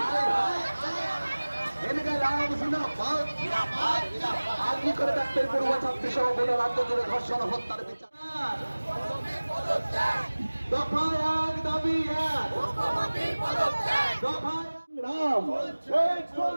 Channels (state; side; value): inverted; both; correlation -1.00